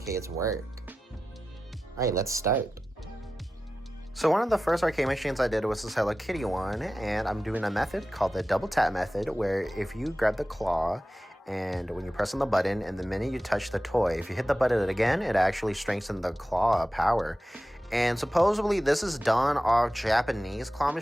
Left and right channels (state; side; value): normal; both; correlation 0.94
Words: work. Alright, let's start. So one of the first arcade machines I did was this Hello Kitty one, and I'm doing a method called the double tap method, where if you grab the claw, and when you press on the button, and the minute you touch the toy, if you hit the button again, it actually strengthens the claw power. And supposedly this is done off Japanese claw